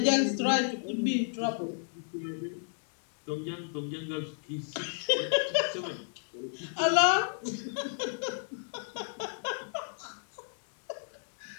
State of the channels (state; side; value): silent; right; digital silence